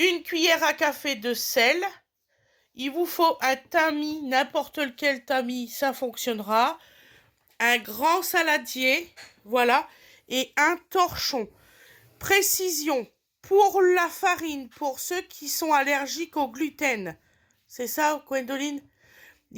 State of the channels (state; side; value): identical; both; correlation 1.00